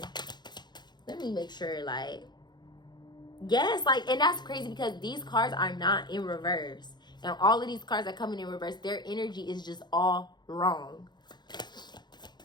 Let me make sure, like, yes, like, and that's crazy because these cards are not in reverse. And all of these cards are coming in reverse. Their energy is just all wrong.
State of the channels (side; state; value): right; late; 0.21 ms